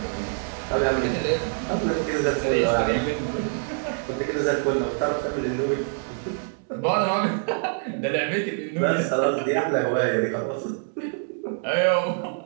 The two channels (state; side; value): silent; left; 62 dB below the other